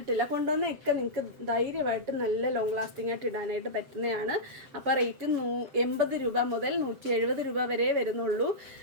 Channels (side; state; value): left; late; 7.5 ms